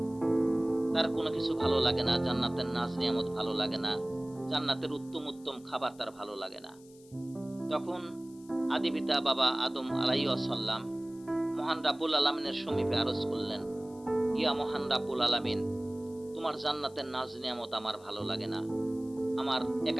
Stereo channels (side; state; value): left; noise; hiss, 26 dB below the sound